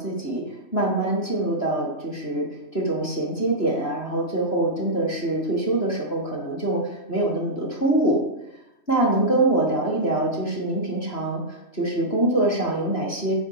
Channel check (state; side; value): late; right; 2.9 ms